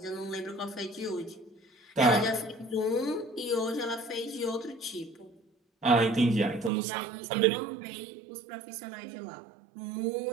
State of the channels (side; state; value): left; drops out; at 6.7 s